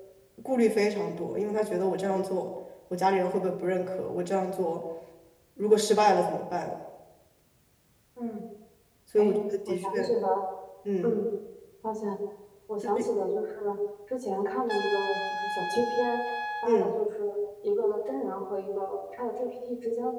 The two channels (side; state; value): both; identical; correlation 1.00